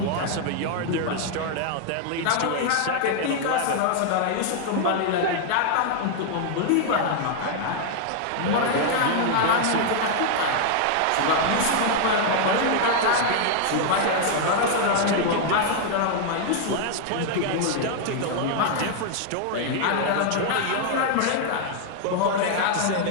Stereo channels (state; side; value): different; both; correlation 0.00